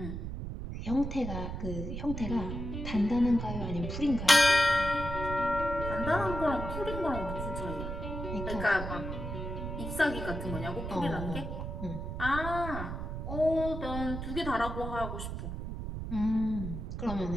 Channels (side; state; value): right; noise; rumble, 5 dB below the sound